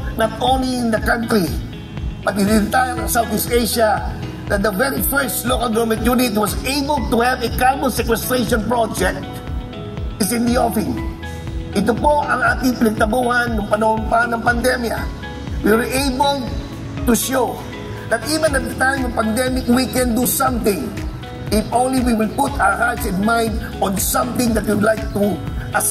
not only in the country but in the entire Southeast Asia that the very first local government unit was able to have a carbon sequestration project is in the offing. Ito po ang ating pinagtabuhan noong panahon pa ng pandemya. We were able to show that even at the time of pandemic, we can do something if only we will put our hearts and mind on something that we would like to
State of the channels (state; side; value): identical; both; correlation 1.00